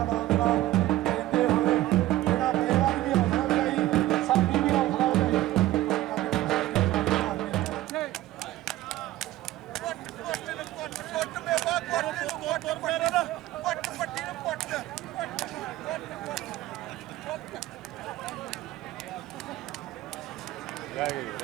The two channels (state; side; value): quieter; left; 15.7 dB